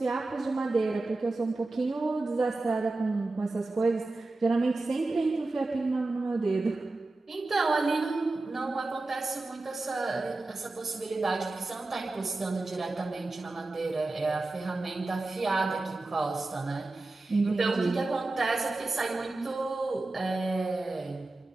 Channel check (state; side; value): quieter; left; 3.2 dB